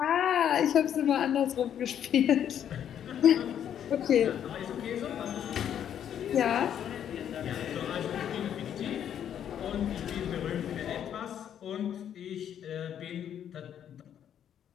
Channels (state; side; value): quieter; right; 9.5 dB